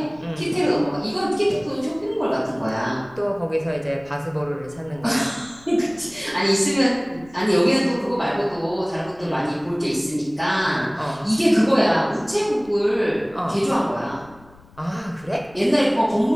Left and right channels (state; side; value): noise; left; rumble, 25 dB below the sound